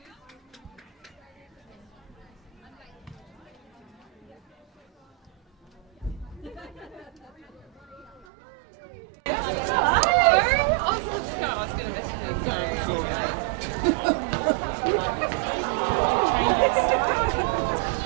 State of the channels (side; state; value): left; drops out; at 8.2 s